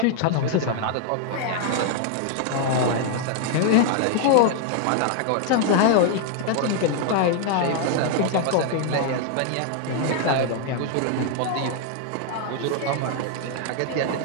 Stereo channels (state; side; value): different; both; correlation 0.00